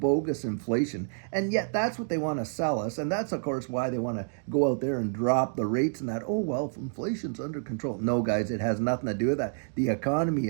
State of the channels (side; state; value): left; silent; digital silence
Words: inflation, and yet that's what they want to sell us. And that's, of course, why they want to go out there and drop the rates and that, oh, well, inflation's under control. No, guys, it has nothing to do with that. The economy